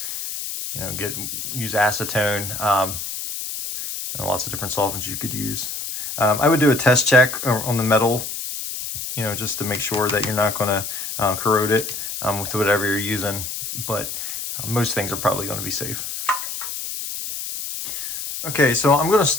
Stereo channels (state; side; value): noise; left; hiss, 6 dB below the sound